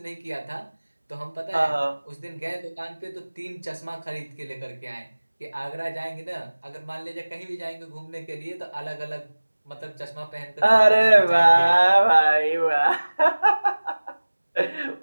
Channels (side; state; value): both; inverted; correlation -1.00